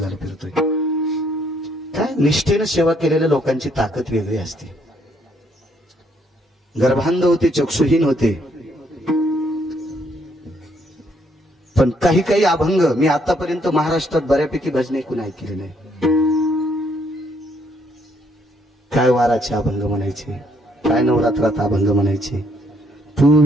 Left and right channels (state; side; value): normal; both; correlation 0.70